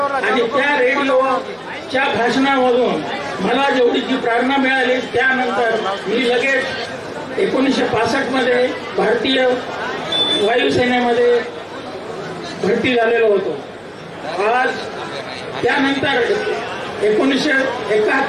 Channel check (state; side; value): identical; both; correlation 1.00